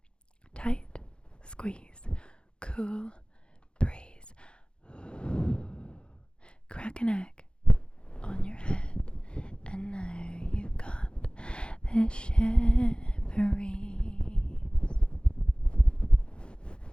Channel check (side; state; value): right; late; 0.053 ms